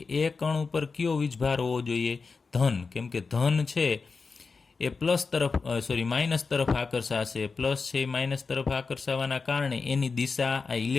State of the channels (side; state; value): right; quieter; 4.6 dB